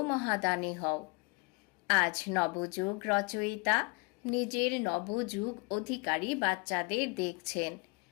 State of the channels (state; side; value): quieter; right; 29.6 dB